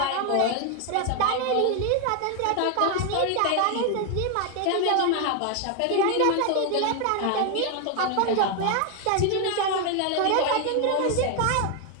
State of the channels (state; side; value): different; both; correlation 0.01